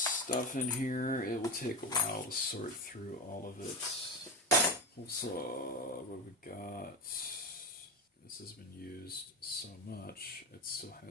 in here. It will take a while to sort through all of it. Also, what we got? This has been used so much, it still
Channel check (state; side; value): normal; both; correlation 0.20